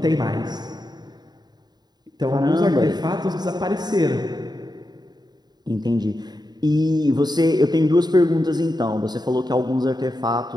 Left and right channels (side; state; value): left; late; 0.20 ms